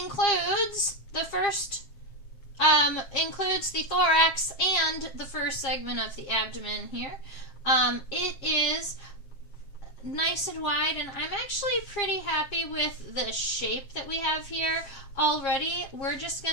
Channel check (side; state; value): right; late; 7.4 ms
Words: includes the thorax and the first segment of the abdomen here. It is nice and wide, and I'm actually pretty happy with the shape that we have here already. We're just